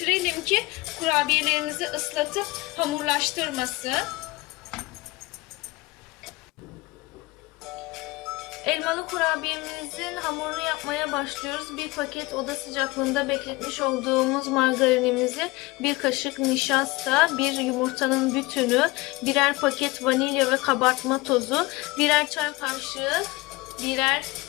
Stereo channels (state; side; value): quieter; right; 22.4 dB